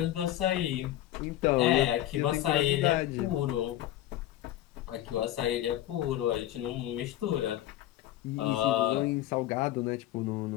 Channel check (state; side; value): quieter; right; 13.6 dB